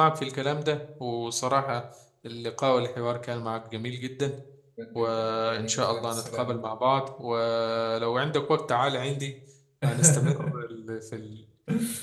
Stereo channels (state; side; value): identical; both; correlation 1.00